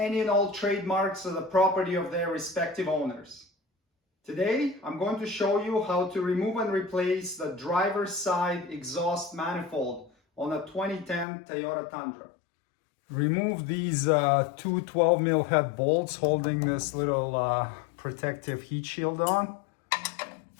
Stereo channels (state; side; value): drops out; right; at 11.2 s